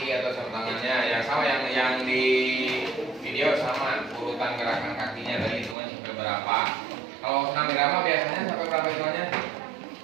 atau sarung tangannya, ya sama yang di video sama. Urutan gerakan kakinya dari hitungan sampai berapa. Kalau senam irama biasanya sampai berapa hitungannya?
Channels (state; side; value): drops out; left; at 5.8 s